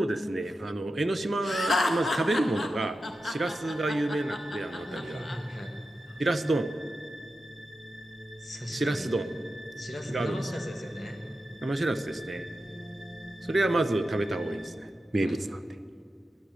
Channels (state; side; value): normal; both; correlation 0.91